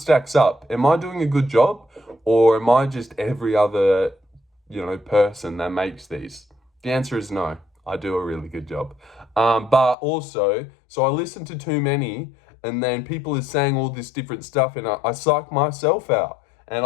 up. Am I doing a good job? Or am I just every other, person that makes these? The answer is no. I do a really good job. But also, so I listen to too many, and then people are saying all this different stuff, and I psych myself out. And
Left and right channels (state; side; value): drops out; right; at 10.0 s